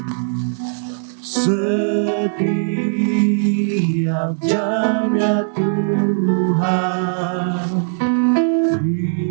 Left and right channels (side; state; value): left; silent; digital silence